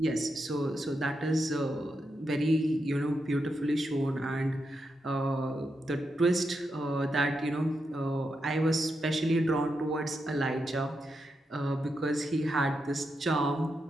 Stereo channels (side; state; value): both; normal; correlation 0.85